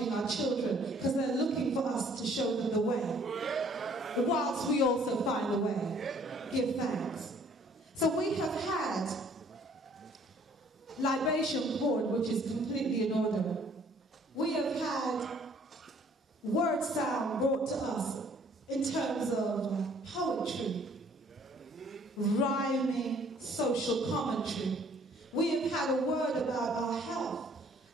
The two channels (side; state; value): both; normal; correlation 0.59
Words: our children because they're looking for us to show them the way, whilst we also find a way. Give thanks. So we have had libation poured, which is completely in order. We have had word sound brought to us in terms of poetry, rhyming, social commentary. We have had a word about our health.